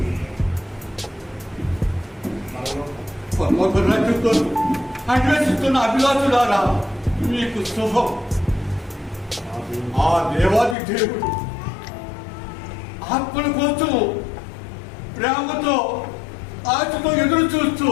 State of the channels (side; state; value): right; drops out; at 10.8 s